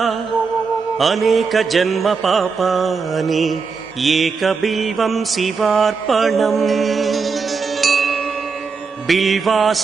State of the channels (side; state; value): left; quieter; 5.0 dB